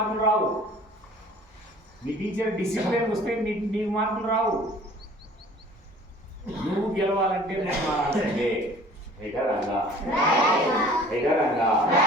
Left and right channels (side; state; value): both; normal; correlation 0.49